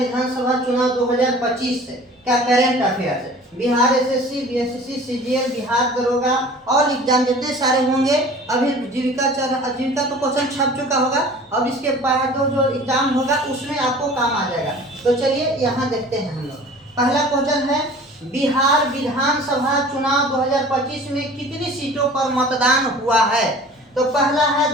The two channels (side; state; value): both; normal; correlation 0.44